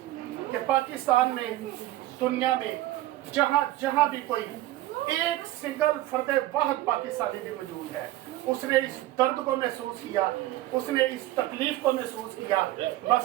कि पाकिस्तान में, दुनिया में जहाँ जहाँ भी कोई एक सिंगल फर्द वाहद पाकिस्तानी भी मौजूद है, उसने इस दर्द को महसूस किया, उसने इस तकलीफ को महसूस किया,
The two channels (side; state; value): left; quieter; 15.8 dB